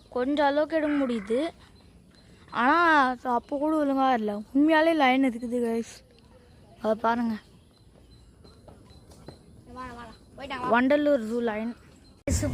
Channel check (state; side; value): identical; both; correlation 1.00